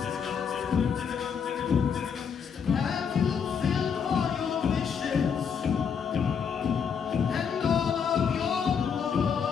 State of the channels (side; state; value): right; quieter; 6.8 dB